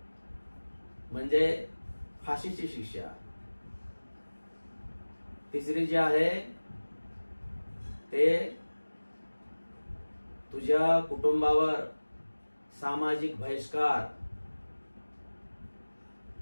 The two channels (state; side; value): inverted; both; correlation -1.00